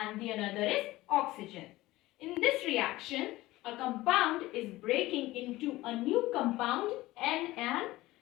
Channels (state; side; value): quieter; right; 18.0 dB